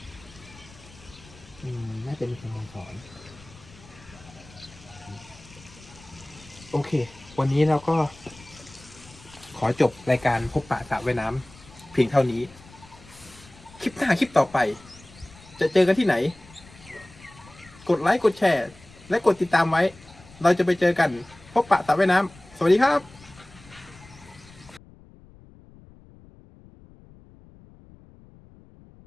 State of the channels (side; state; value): left; noise; rumble, 23 dB below the sound